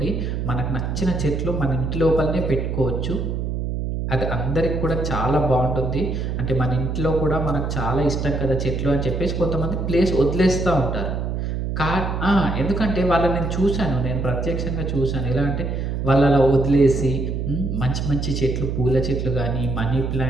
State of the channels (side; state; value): right; noise; hum, 2 dB below the sound